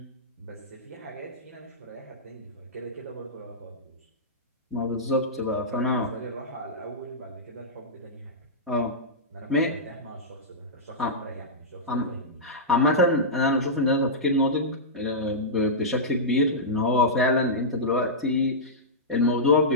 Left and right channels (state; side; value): normal; both; correlation -0.13